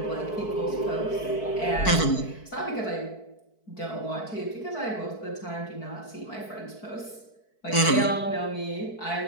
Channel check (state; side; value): late; right; 4.6 ms